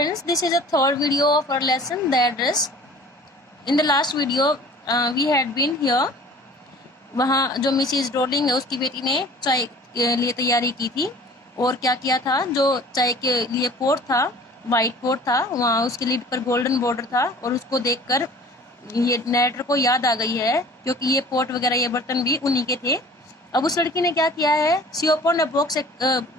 this is a third video of our lesson, the address. In the last video, we had been here. वहाँ जो मिसिज रोलिंग है उसकी बेटी ने चाय के लिए तैयारी की थी और क्या किया था, जो चाय के लिए पोट था, वाइट पोट था, वहाँ उसके लिड पर गोल्डन बॉर्डर था और उसको देखकर ये नरेटर को याद आ गई है क्योंकि ये पोट वगैरह ये बर्तन भी उन्हीं के थे। अब उस लड़की ने क्या किया है, सी ओपन अ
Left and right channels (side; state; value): both; normal; correlation 0.47